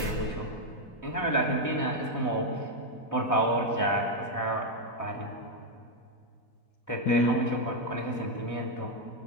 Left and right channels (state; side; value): late; right; 4.1 ms